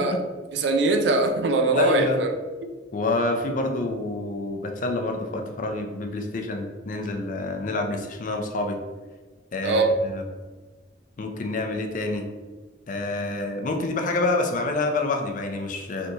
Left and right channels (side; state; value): both; normal; correlation 0.20